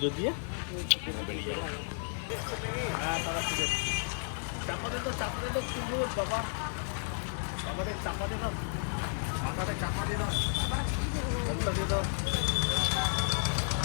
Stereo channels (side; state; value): right; silent; 56 dB below the other